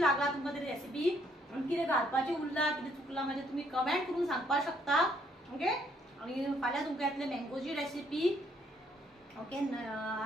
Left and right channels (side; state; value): both; normal; correlation 0.68